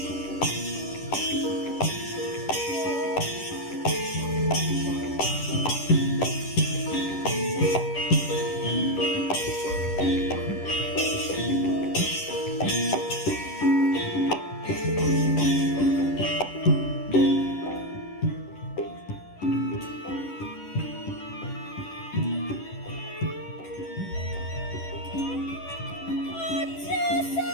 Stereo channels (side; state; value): right; late; 10 ms